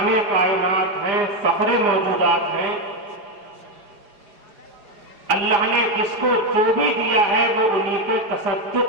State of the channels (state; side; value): late; left; 5.0 ms